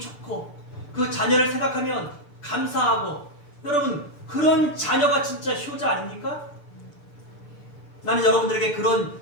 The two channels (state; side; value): late; right; 6.8 ms